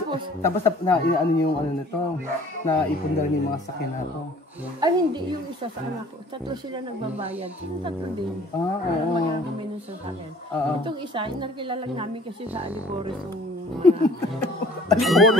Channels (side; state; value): both; normal; correlation 0.52